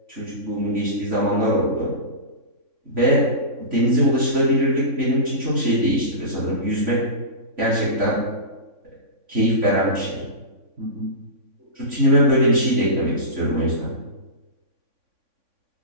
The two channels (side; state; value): left; late; 3.6 ms